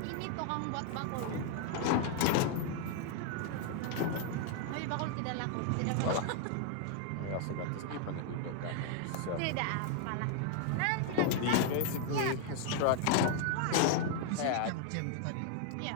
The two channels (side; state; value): both; different; correlation 0.00